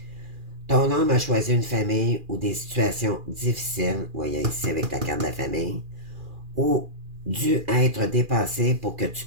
Ton âme a choisi une famille ou des situations difficiles, voyez ici avec la carte de la famille, ou dû être dépassé pour que tu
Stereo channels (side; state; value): left; late; 2.4 ms